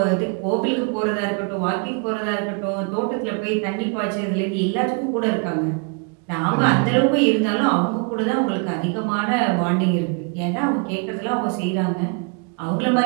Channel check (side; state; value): left; quieter; 34.5 dB